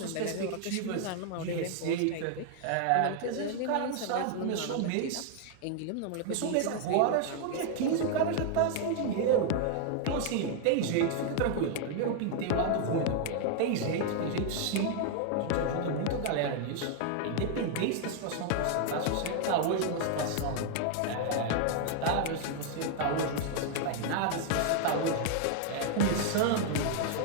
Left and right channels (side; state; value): both; different; correlation 0.00